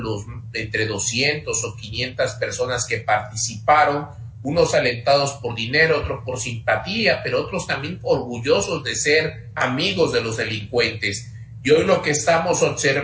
entre 200 o 500 personas que participaron, unos alentados por dinero, otros por simpatía, pero otros también orgullosos de ser amigos de los delincuentes. Y hoy lo que estamos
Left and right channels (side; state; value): both; identical; correlation 1.00